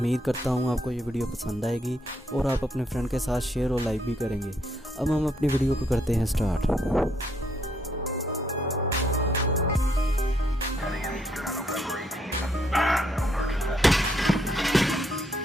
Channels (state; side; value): normal; both; correlation 0.73